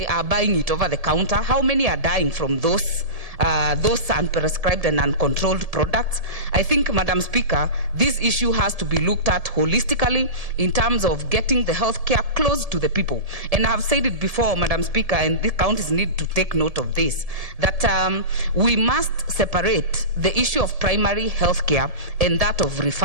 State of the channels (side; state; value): left; late; 1.7 ms